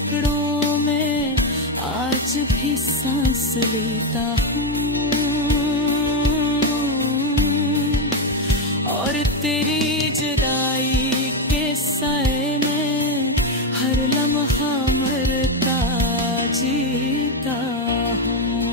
में आज भी सांस लेता हूँ, और तेरी जुदाई के साए में हर लम्हा मरता जीता हूँ।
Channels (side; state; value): both; normal; correlation 0.08